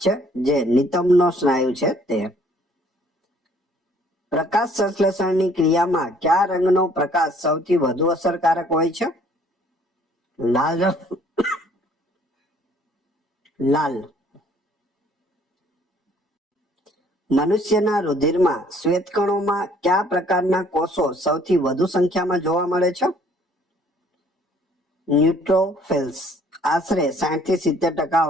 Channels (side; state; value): both; normal; correlation 0.59